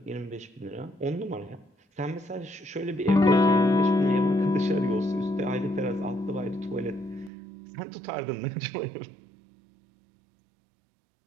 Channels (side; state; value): left; drops out; at 7.3 s